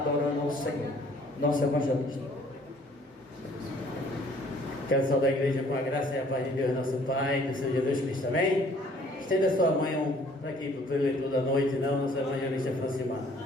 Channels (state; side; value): normal; both; correlation 0.58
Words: ao Senhor, nosso evangelista. Quero saudar a igreja com a graça e a paz de Deus, nosso Pai, do Senhor Jesus Cristo, amém? Estenda a sua mão para aqui, para o preletor da noite, não, nosso evangelista Francimar.